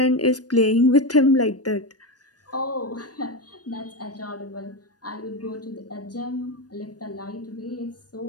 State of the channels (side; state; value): right; late; 0.69 ms